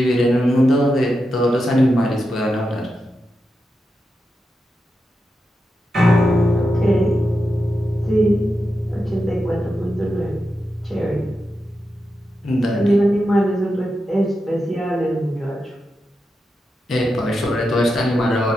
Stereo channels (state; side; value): normal; both; correlation 0.88